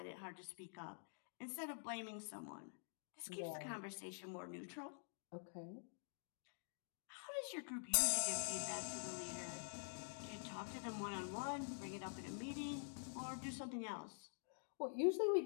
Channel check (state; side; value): silent; right; digital silence